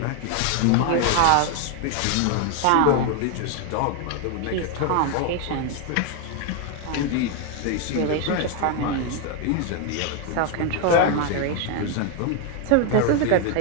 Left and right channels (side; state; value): both; different; correlation 0.01